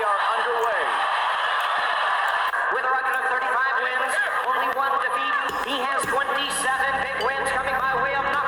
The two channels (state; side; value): identical; both; correlation 1.00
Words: are underway. With a record of 35 wins, only one defeat. He has 27 big wins coming by way of